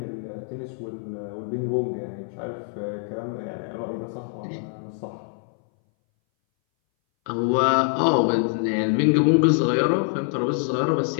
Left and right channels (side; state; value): right; silent; 60 dB below the other